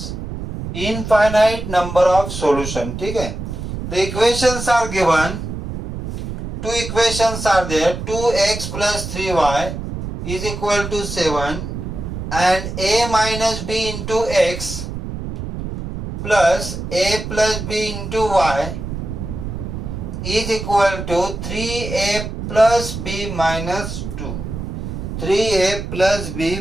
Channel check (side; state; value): right; noise; rumble, 6 dB below the sound